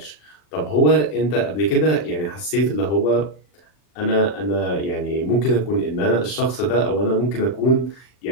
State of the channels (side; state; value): right; late; 39 ms